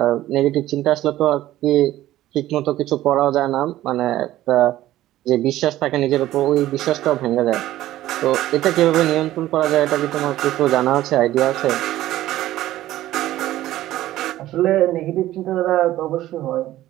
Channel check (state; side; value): quieter; left; 14.6 dB